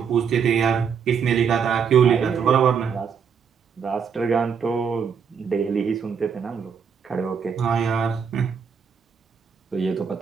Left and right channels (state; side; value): quieter; left; 6.7 dB